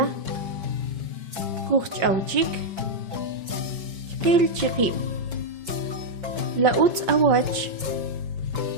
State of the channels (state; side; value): late; left; 5.1 ms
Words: Kuchauchik. Kil chikib. Lauts awach.